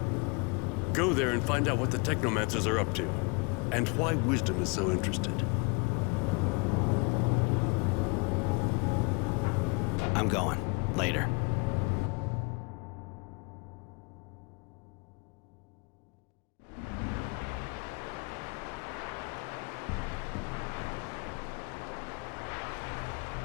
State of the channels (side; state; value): right; quieter; 31.3 dB